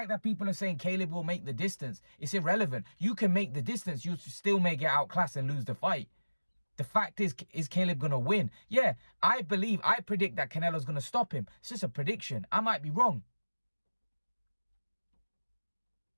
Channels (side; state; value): both; inverted; correlation -1.00